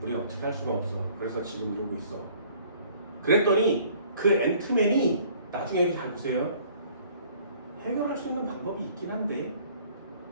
우린 어떻게 할 수가 없어. 그래서 지금 이러고 있어. 그랬더니 그 앤트맨이 나중에 잘 보세요. 해결할 수 있는 방법이 있긴 한데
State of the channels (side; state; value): both; inverted; correlation -0.55